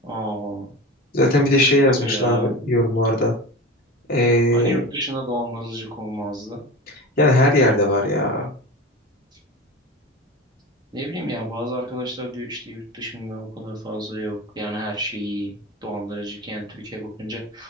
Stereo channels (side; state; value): both; normal; correlation 0.30